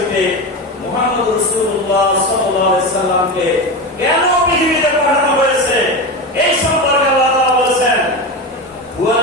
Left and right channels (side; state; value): both; normal; correlation 0.21